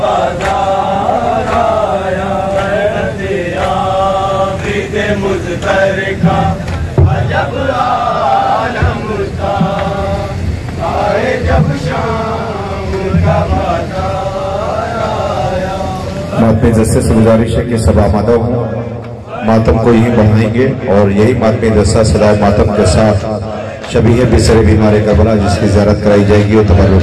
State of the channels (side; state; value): both; identical; correlation 1.00